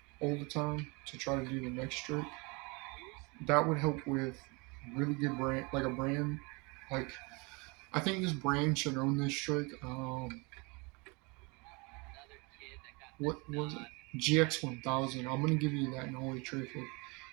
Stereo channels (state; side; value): quieter; left; 28.9 dB